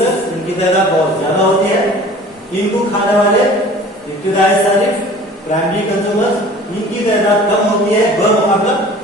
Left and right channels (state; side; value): normal; both; correlation 0.45